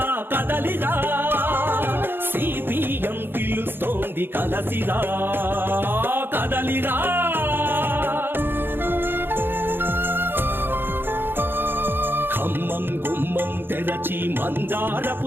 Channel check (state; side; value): late; left; 0.10 ms